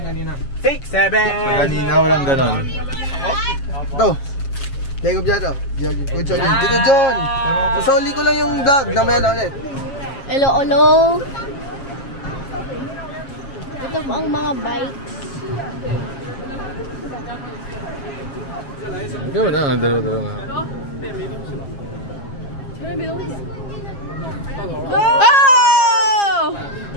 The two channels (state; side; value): late; right; 7.4 ms